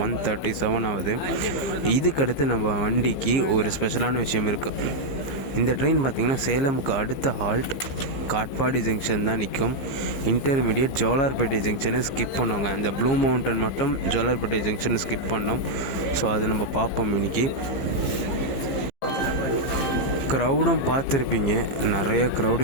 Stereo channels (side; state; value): right; late; 15 ms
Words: 1:37 ஆகுது. இதுக்கடுத்து நம்ம வண்டிக்கு ஒரு ஸ்பெஷலான விஷயம் இருக்குது. இந்த ட்ரெயின் பார்த்திங்கன்னா சேலமுக்கு அடுத்த ஹால்ட் காட்பாடி ஜங்ஷன் தான் நிற்கும். இன்டர்மீடியட் ஜோலார்பேட்டை ஜங்ஷனை ஸ்கிப் பண்ணுவாங்க. இந்த ப்ளூ மவுண்டன் மட்டும் ஜோலார்பேட்டை ஜங்ஷனை ஸ்கிப் பண்ணோம். ஸோ அது நம்ம பார்ப்போம் இன்றைக்கி. க்ரௌடும் பார்த்துருப்பீங்க, நிறைய க்ரௌடு